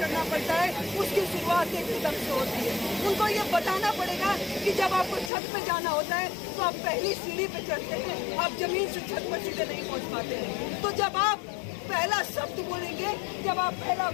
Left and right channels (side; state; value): right; drops out; at 5.3 s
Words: पड़ता है उसकी शुरुआत एक कदम से होती है। उनको ये बताना पड़ेगा कि जब आपको छत पे जाना होता है तो आप पहली सीढ़ी पे चढ़ते हैं, आप जमीन से छत पर सीधे नहीं पहुंच पाते हैं। तो जब आप पहला शब्द बोलेंगे, जब आप पहला